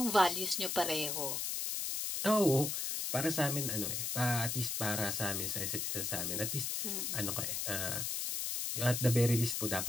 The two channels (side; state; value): left; noise; hiss, 1 dB below the sound